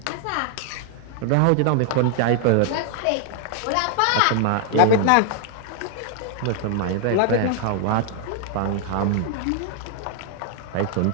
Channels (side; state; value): both; different; correlation 0.00